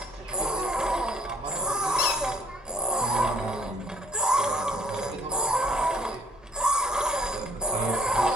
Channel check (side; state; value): both; normal; correlation 0.61